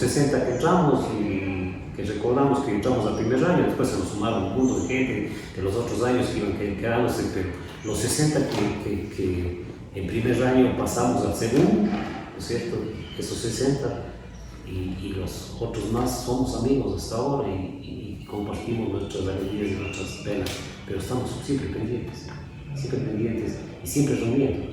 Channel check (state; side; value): identical; both; correlation 1.00